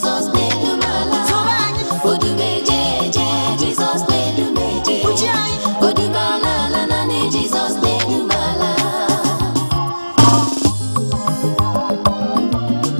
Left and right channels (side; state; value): both; inverted; correlation -1.00